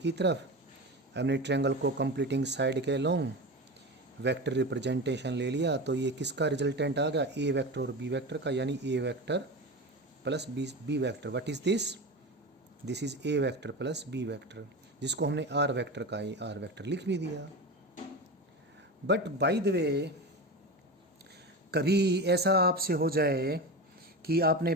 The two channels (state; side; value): normal; both; correlation 0.25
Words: की तरफ हमने ट्रायंगल को कंप्लीटिंग साइड के लॉन्ग वेक्टर रिप्रेजेंटेशन ले लिया। तो ये किसका रिजल्टेंट आ गया? ए वेक्टर और बी वेक्टर का, यानी A vector plus B vector. What is this? This is A vector plus B vector, जिसको हमने आर वेक्टर का ए आर वेक्टर लिख भी दिया। बट बाय द वे, कभी ऐसा आपसे हो जाए कि आपने